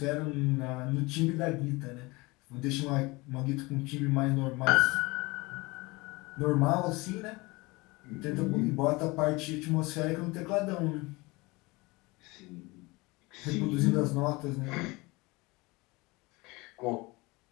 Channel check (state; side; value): quieter; right; 23.8 dB